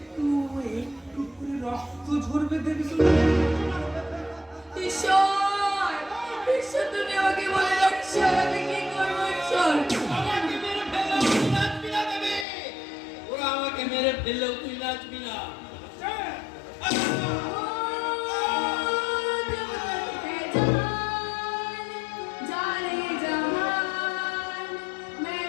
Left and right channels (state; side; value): drops out; right; at 12.5 s